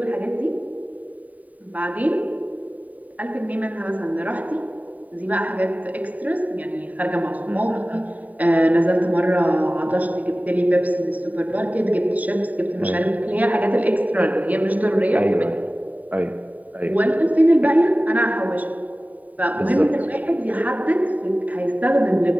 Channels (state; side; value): late; left; 0.073 ms